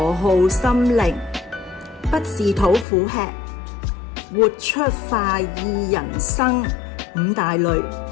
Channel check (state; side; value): drops out; right; at 2.9 s